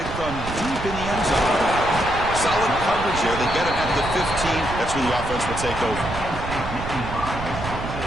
from deep in the end zone. Solid coverage there. They get it at the 15. That's where the offense will take over.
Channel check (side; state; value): right; noise; rumble, 8 dB below the sound